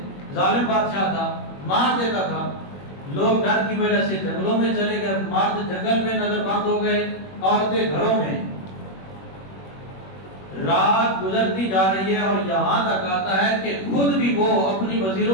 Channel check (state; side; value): late; right; 21 ms